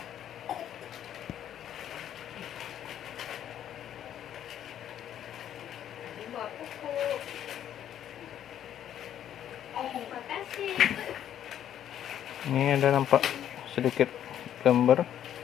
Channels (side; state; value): right; quieter; 10.5 dB